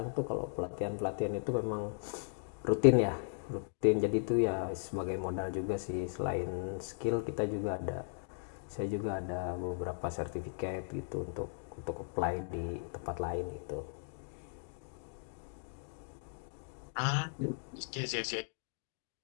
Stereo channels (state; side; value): silent; right; digital silence